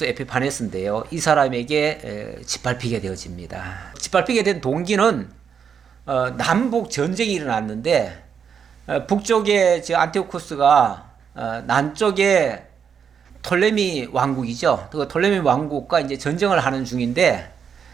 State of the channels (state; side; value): quieter; left; 7.2 dB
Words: 에피파네스인데요. 이 사람에게 짓밟히게 되어집니다. 짓밟히게 된 동기는 남북 전쟁이 일어났는데 북쪽에 안티오쿠스가 남쪽에 톨레미 왕국이죠. 그 톨레미 왕국과 이제 전쟁을 하는 중인데